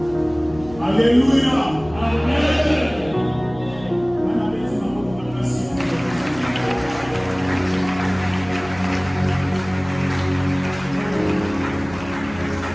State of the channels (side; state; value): left; noise; hum, 18 dB below the sound